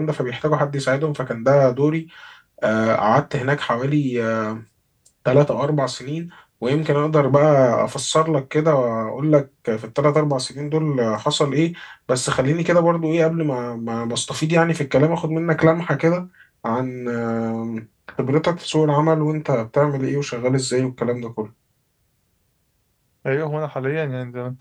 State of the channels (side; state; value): both; identical; correlation 1.00